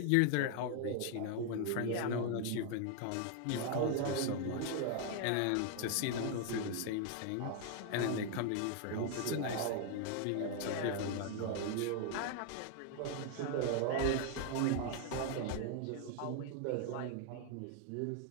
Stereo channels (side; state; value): both; different; correlation 0.00